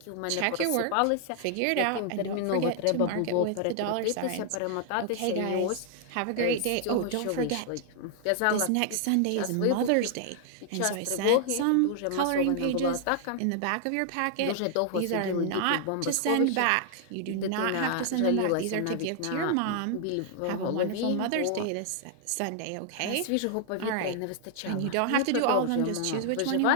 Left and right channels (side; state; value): both; different; correlation 0.00